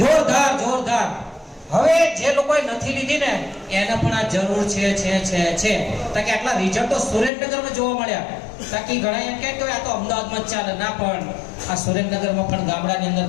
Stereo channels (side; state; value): right; drops out; at 7.3 s